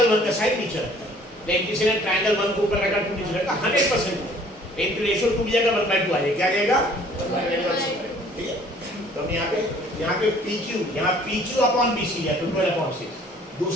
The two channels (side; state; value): both; normal; correlation 0.55